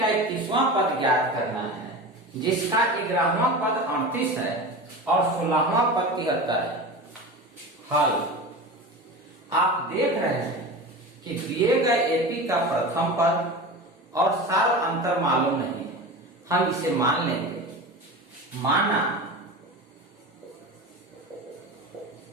31वां पद ज्ञात करना है जिसका 11वां पद 38 है और 16वां पद 73 है। हल, आप देख रहे हैं कि दिए गए AP का प्रथम पद और सार अंतर मालूम नहीं है, हम इसे मान लेंगे। माना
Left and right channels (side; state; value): both; normal; correlation 0.29